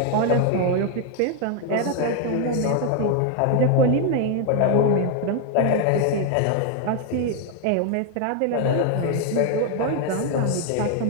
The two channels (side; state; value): both; different; correlation 0.01